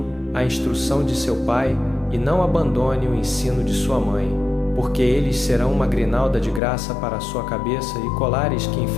a instrução de seu pai e não abandone o ensino de sua mãe, porque eles serão uma grinalda de graça para a sua cabeça e colares que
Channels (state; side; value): drops out; right; at 6.6 s